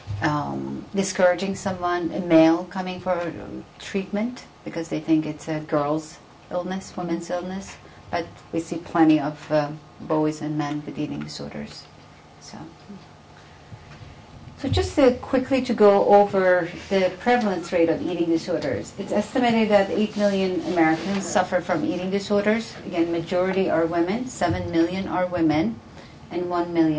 discouraging someone, a male coming for treatment because they think it's a girl's illness, women's illness. But we see plenty of boys and men with eating disorders. So just quickly to go over the prevalence rate of eating disorders. It's estimated that 8 million Americans suffer from eating disorders. Again, majority are women. 7 million are women, and 1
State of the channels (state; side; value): identical; both; correlation 1.00